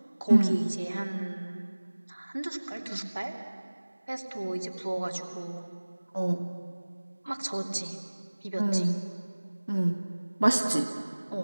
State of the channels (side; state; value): both; inverted; correlation -1.00